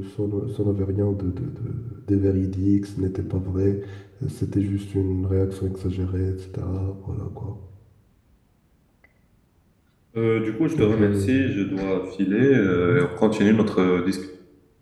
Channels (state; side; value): identical; both; correlation 1.00